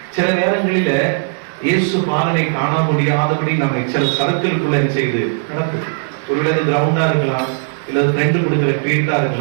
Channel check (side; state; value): left; silent; digital silence